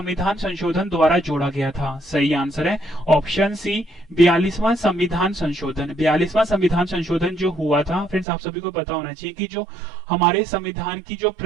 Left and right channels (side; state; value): left; drops out; at 8.2 s